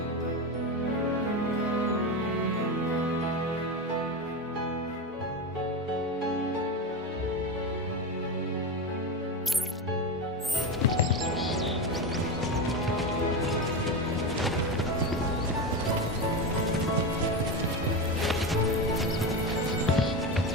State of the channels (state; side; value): normal; both; correlation 0.18